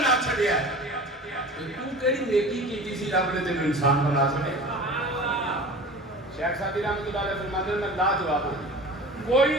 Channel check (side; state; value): both; normal; correlation 0.38